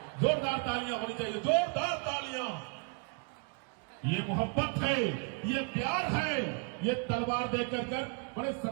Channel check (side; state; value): left; quieter; 34.6 dB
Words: जोरदार तालियां होनी चाहिए, जोरदार तालियां। ये मोहब्बत है, ये प्यार है, ये तलवार देकर कर बड़े